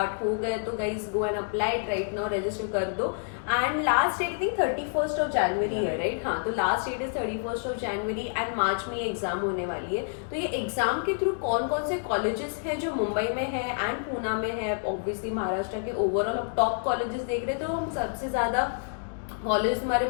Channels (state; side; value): silent; right; digital silence